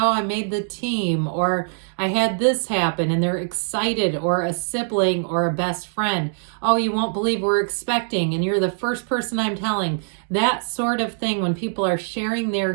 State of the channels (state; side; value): silent; left; digital silence